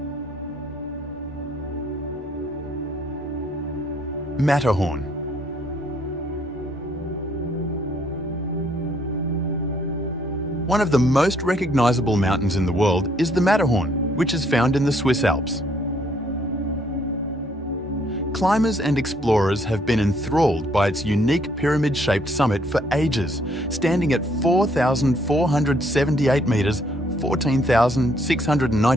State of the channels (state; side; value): normal; both; correlation 0.67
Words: Matterhorn. One of the most recognizable mountains in the world is the Matterhorn, which is found in the Swiss Alps. Climbers and explorers have been enthralled by its unique pyramid-shaped summit for ages, standing at 4,478 meters,